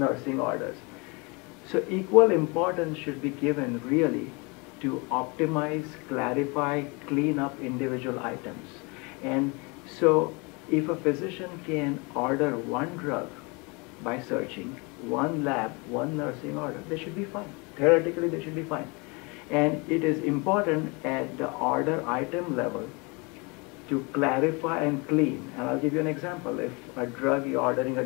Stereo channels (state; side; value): quieter; right; 29.1 dB